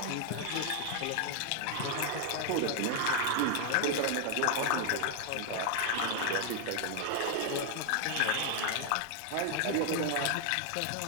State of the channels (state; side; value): different; both; correlation 0.00